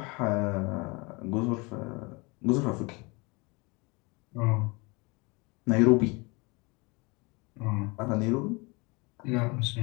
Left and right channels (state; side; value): quieter; right; 27.4 dB